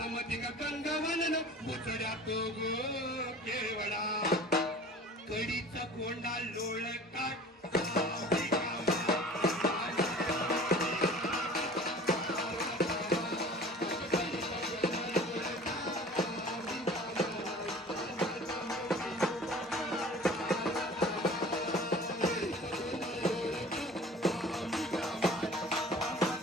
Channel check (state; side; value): normal; both; correlation 0.44